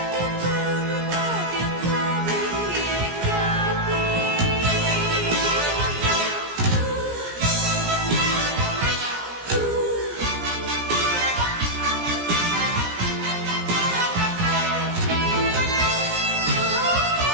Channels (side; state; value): left; late; 17 ms